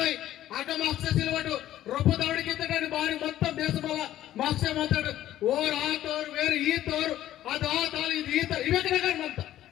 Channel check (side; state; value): right; quieter; 13.1 dB